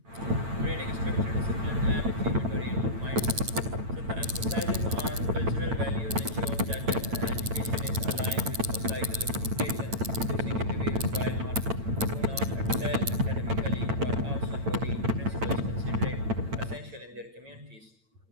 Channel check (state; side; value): late; left; 8.9 ms